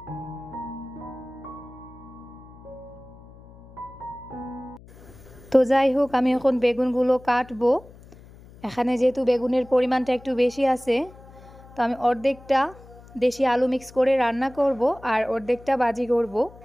তো যাই হোক, আমি এখন বেগুনগুলো কাটবো। এখানে যেহেতু বেগুনের পরিমাণটা একটু বেশি আছে, তো আমি অর্ধেকটা দেশি আলু মিক্স করে রান্না করব আর অর্ধেকটা ভাজি করব।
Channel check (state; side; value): noise; left; hum, 21 dB below the sound